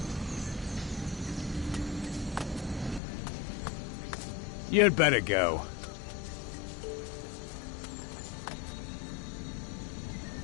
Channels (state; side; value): drops out; right; at 3.0 s